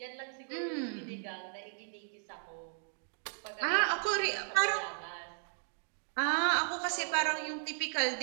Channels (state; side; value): silent; left; digital silence